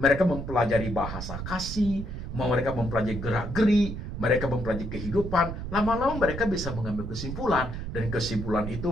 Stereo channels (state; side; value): noise; right; rumble, 6 dB below the sound